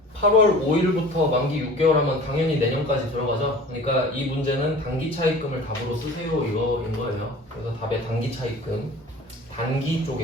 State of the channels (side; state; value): both; normal; correlation 0.42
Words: 8월 5일부터 만기 6개월 하면 당연히 내년까지 들어가죠. 그러니까 이 문제는 단기 차입금을 답으로 쓰세요 이거인 거예요. 그래서 답에 단기 차입금 단기